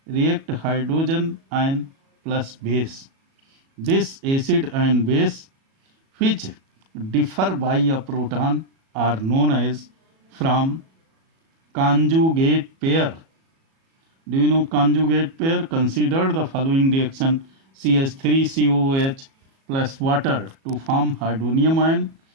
react hydrogen ion plus base. This acid and base, which differ by a proton, are known as from conjugate pair. Do you know conjugate pair? Consider the following reaction: CH3COOH plus water to form hydronium ion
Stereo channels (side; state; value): left; late; 37 ms